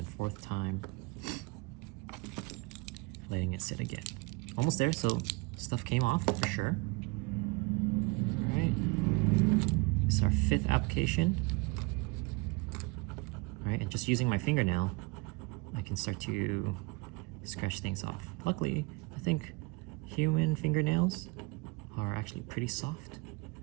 fourth time, letting it sit again. Almost there, so stuff came off for sure. All right, this is our fifth application. All right, and just using my fingernail, I can start to scratch things off. Luckily, I think human fingernails are actually pretty soft.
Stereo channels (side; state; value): left; quieter; 27.2 dB